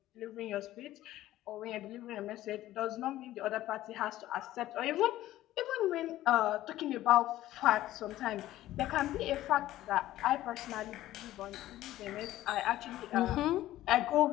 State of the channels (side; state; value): right; quieter; 14.7 dB